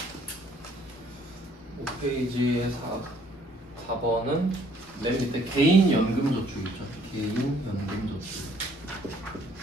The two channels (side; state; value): both; normal; correlation 0.62